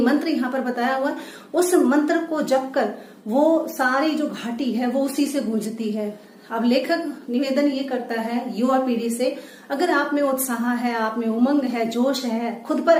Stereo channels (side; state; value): both; identical; correlation 1.00